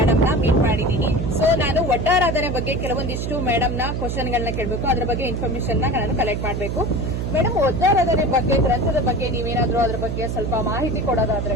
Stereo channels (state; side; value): noise; right; hum, 3 dB below the sound